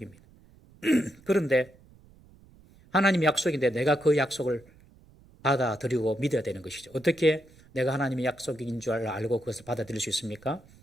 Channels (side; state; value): right; noise; rumble, 26 dB below the sound